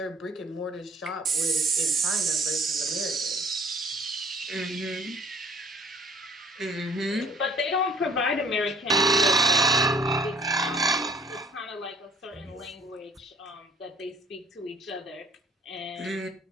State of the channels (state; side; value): normal; both; correlation 0.55